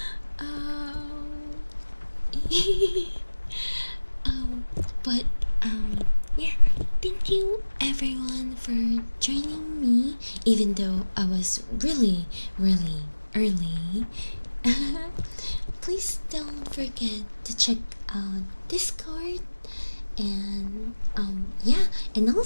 um, um, but yeah. Thank you everyone for joining me, even though I was really, really early. Please don't forget to check out Discord and yeah, and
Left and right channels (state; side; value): inverted; both; correlation -1.00